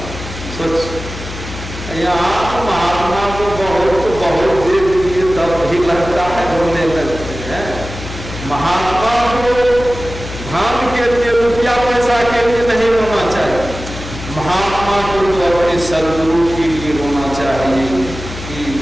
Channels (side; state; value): left; noise; hum, 10 dB below the sound